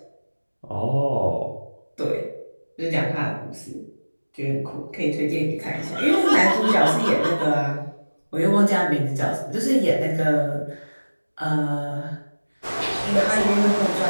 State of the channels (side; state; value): both; inverted; correlation -1.00